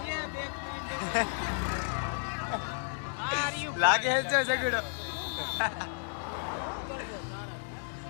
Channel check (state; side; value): silent; right; digital silence